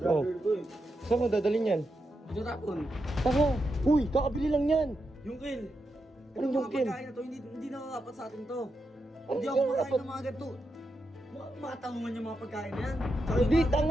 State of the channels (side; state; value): both; normal; correlation 0.86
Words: Oh. brother ko eh. Saan mo dadalhin yan? Tinatapon. Tama! Uy, kakabili lang yan! Yung kail. Anong yung mga kail? pagkain na to, hindi na dapat sa atin to. Ano Hindi yung ako makain dapat? ng mga ganito. Matangungan yung mga pagkain na yan. Hindi,